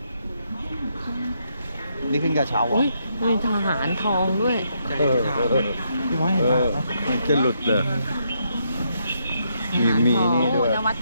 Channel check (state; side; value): inverted; both; correlation -0.77